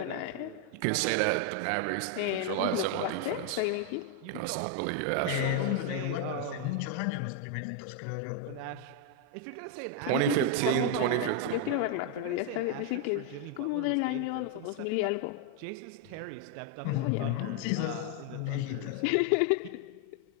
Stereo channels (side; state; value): both; different; correlation 0.00